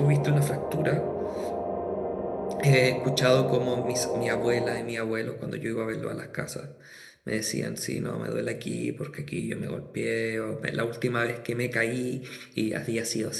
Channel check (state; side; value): identical; both; correlation 1.00